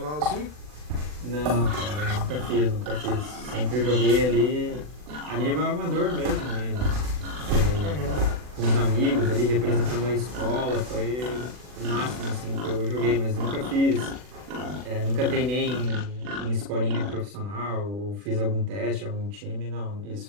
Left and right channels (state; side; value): late; left; 40 ms